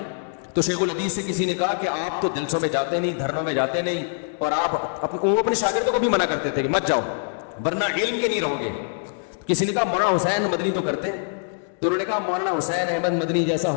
تو شیخ الحدیث سے کسی نے کہا کہ آپ تو جلسوں میں جاتے نہیں، دھرنوں میں جاتے نہیں، اور آپ وہ اپنے شاگردوں کو بھی منع کرتے تھے کہ مت جاؤ ورنہ علم کے نہیں رہو گے. کسی نے کہا مولانا حسین مدنی تو کرتے ہیں، تو انہوں نے کہا مولانا حسین احمد مدنی جیسا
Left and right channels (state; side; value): silent; right; digital silence